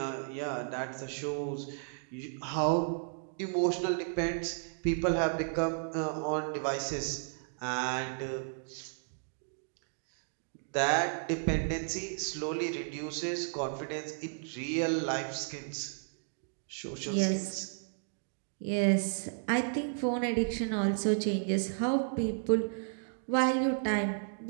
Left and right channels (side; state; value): left; silent; digital silence